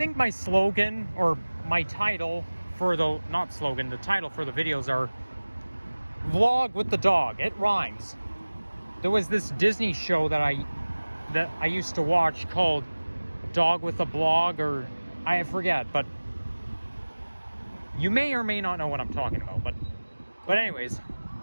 my slogan, or my title for the, not slogan, the title for the videos are Vlog with the Dog. It rhymes. There was this Disney show that I used to watch called Dog with a Blog, or I forget, but you may or may not know what I'm talking about. But anyways,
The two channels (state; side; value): inverted; both; correlation -1.00